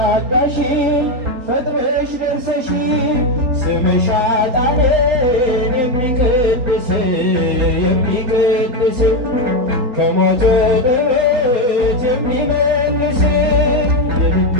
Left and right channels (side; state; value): left; late; 3.8 ms